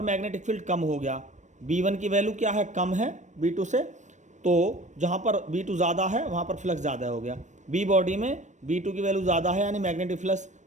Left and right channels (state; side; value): late; left; 0.35 ms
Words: मैग्नेटिक फील्ड कम हो गया, B1 की वैल्यू क्या है, कम है B2 से, तो जहाँ पर B2 ज़्यादा है वहाँ पर फ्लक्स ज़्यादा हो गया। बी बॉडी में B2 की वैल्यू ज़्यादा है, यानी मैग्नेटिक फ्लक्स